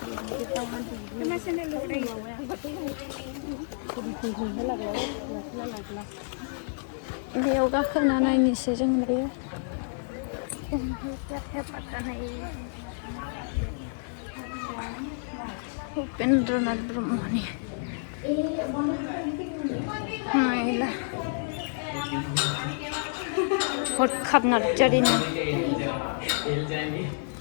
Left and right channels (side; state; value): right; silent; digital silence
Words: बेयाव गाखोना नायनोसै जों दायो उपेंद्रनाथ ब्रह्मनि नायला हरखाब नार्जारिनि